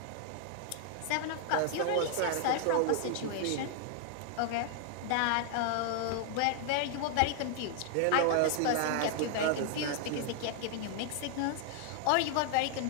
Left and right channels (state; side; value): different; both; correlation 0.00